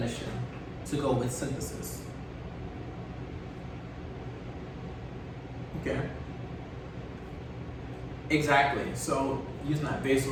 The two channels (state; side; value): identical; both; correlation 1.00